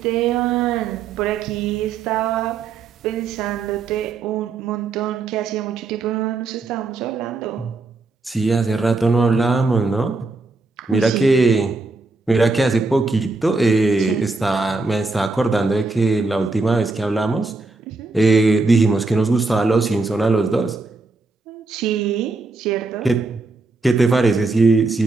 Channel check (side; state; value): left; quieter; 3.6 dB